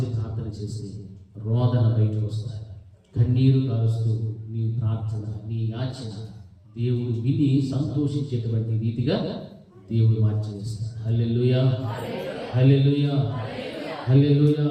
ప్రార్థన చేసి రోదన బయటకు వస్తాయి. కన్నీరు కారుస్తూ నీ ప్రార్థన, నీ యాచన దేవుడు విని సంతోషించేటువంటి రీతిగా దేవుడు మార్చేస్తాడు. హల్లెలూయా, హల్లెలూయా, హల్లెలూయా,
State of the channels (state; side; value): identical; both; correlation 1.00